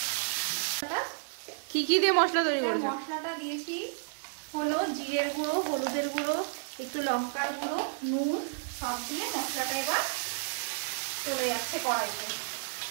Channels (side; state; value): left; silent; digital silence